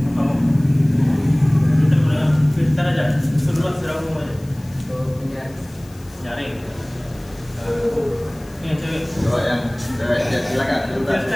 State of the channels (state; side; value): noise; left; hiss, 25 dB below the sound